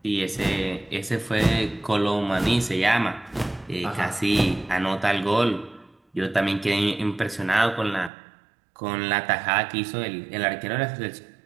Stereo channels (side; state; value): left; drops out; at 8.1 s